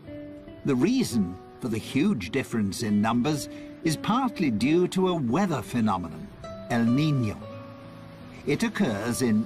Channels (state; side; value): identical; both; correlation 1.00